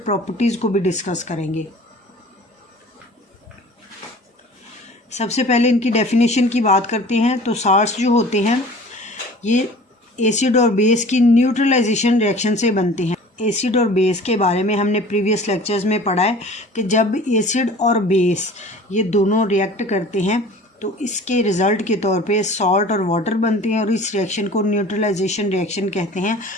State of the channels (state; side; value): normal; both; correlation 0.45